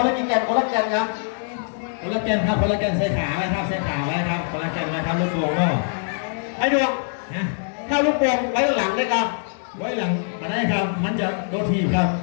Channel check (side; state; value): right; silent; digital silence